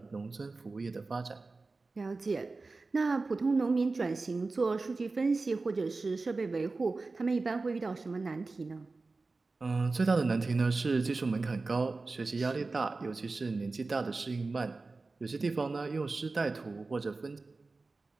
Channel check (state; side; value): quieter; left; 3.7 dB